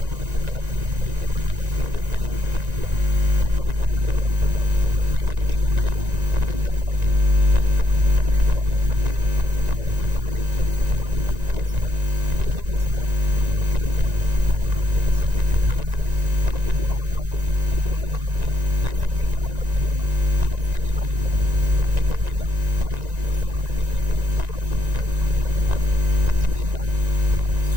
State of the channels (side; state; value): left; late; 1.9 ms